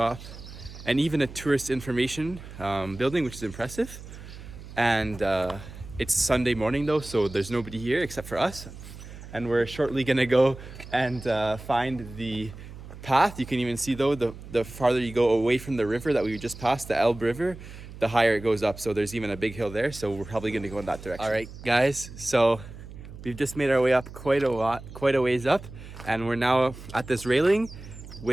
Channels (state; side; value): noise; right; hum, 14 dB below the sound